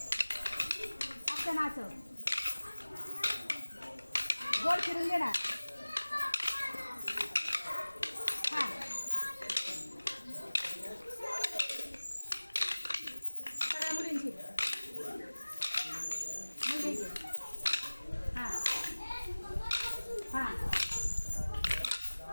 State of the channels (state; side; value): inverted; both; correlation -1.00